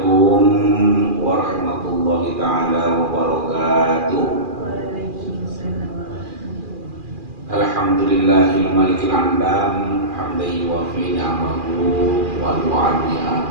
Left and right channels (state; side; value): late; left; 2.4 ms